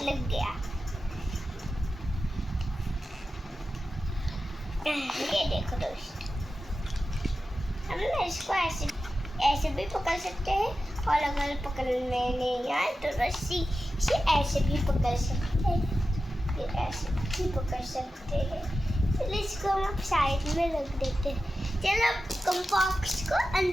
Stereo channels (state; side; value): normal; both; correlation 0.93